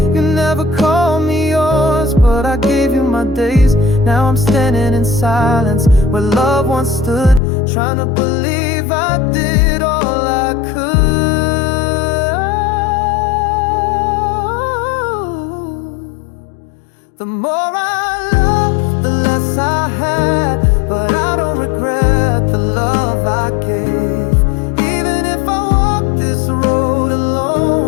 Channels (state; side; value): drops out; right; at 7.4 s